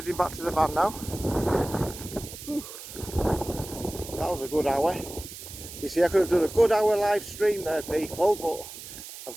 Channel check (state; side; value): noise; right; hiss, 13 dB below the sound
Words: back to the van now. Whew. That was a good hour. You see, I could have done a good hour live stream there, people, but I've